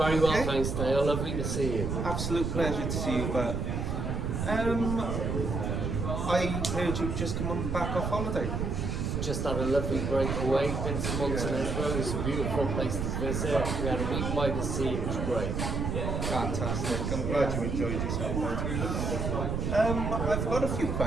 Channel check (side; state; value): right; noise; rumble, 1 dB below the sound